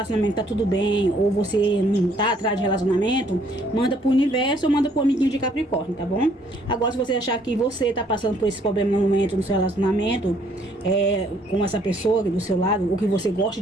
tá tudo bem, ou você não tá atrás de relacionamento, manda pro universo ou manda pro amiguinho de Capricórnio, tá bom? Agora, se você achar que você tá passando por esse problema no momento, no seu relacionamento, com essa pessoa do seu lado, ou que você gosta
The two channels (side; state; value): both; normal; correlation 0.65